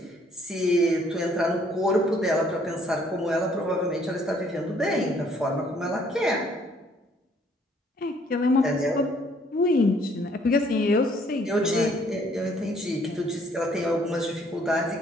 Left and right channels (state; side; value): normal; both; correlation 0.63